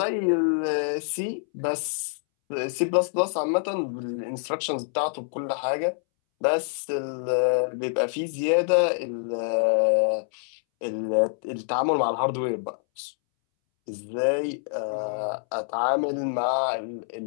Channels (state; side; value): silent; right; 61 dB below the other